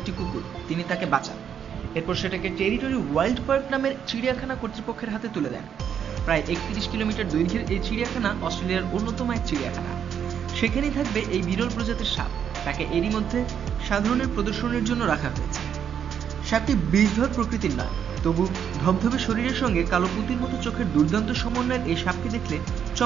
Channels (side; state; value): left; quieter; 8.3 dB